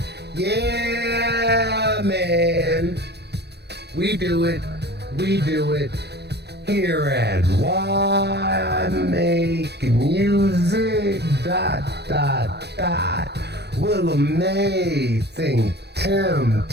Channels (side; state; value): left; late; 0.48 ms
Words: Yeah, man, we do it here at Why Make Music, ... Willa May, ThinkTimm,